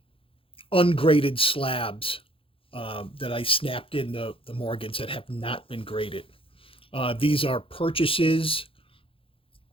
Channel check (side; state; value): right; late; 0.26 ms